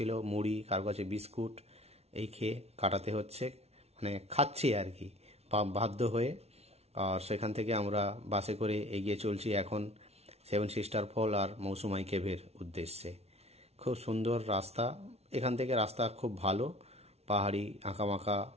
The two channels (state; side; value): late; left; 0.31 ms